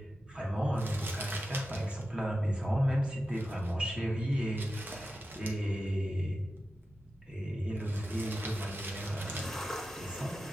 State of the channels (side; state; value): both; normal; correlation 0.92